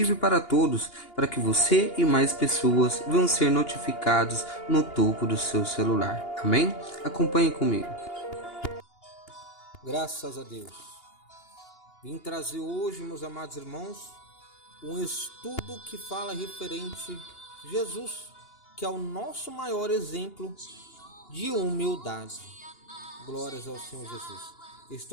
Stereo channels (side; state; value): right; late; 2.8 ms